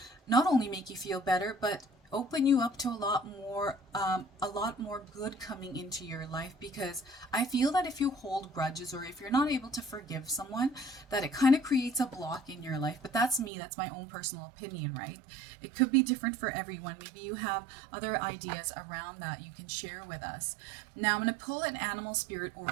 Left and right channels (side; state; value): left; drops out; at 13.5 s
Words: Not only make you feel better, but open you up to a lot more good coming into your life, because I feel that if you hold grudges or if you're not able to forgive someone, that it kind of creates a block in your life. But that's me, that's my own personal opinion, right? It could be different for everyone. Maybe you have other ideas around that you can share with us. Now I'm going to pull an animal spirit